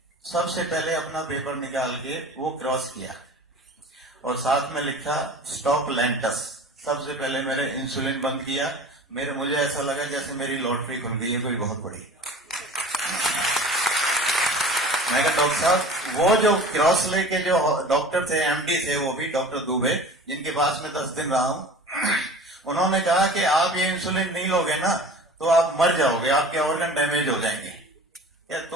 सबसे पहले अपना पेपर निकाल के वो क्रॉस किया और साथ में लिखा स्टॉप लेंटस। सबसे पहले मेरे इंसुलिन बंद किया। मुझे ऐसा लगा जैसे मेरी लॉटरी खुल गई है कोई बहुत बड़ी। मैं कहा डॉक्टर साहब, वो जो क्रॉस लेके जो डॉक्टर थे, एमडी थे, वो भी डॉक्टर दुबे, जिनके पास में 10 दिन रहा हूं, उन्होंने कहा कि आप ये इंसुलिन नहीं लोगे ना तो आप मर जाओगे, आपके ऑर्गन डैमेज हो जाएंगे।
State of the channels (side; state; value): both; normal; correlation 0.41